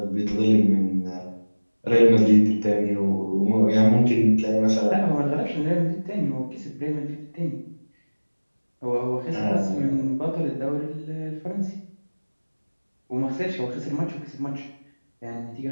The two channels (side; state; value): both; inverted; correlation -1.00